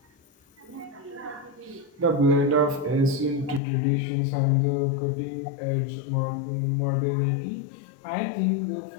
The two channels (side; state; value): right; drops out; at 3.6 s